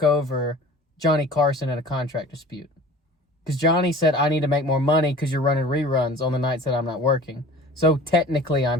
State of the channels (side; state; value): both; normal; correlation 0.44